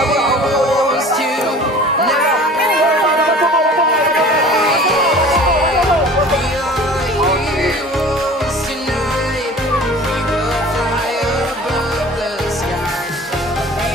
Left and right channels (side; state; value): both; normal; correlation 0.43